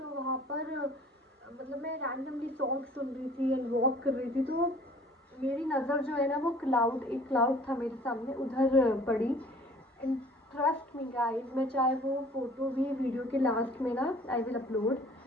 वहाँ पर मतलब मैं रैंडमली सॉन्ग सुन रही थी एंड वॉक कर रही थी। तो मेरी नज़र जो है ना, वो एक क्लाउड था मेरे सामने, उधर पड़ी। एंड ट्रस्ट मी गाइस, मैं चाहे वो फ़ोटो भी वीडियो के लास्ट में ना I will upload,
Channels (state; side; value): normal; both; correlation 0.51